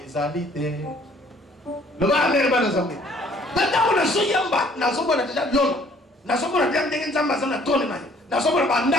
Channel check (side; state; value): both; normal; correlation 0.59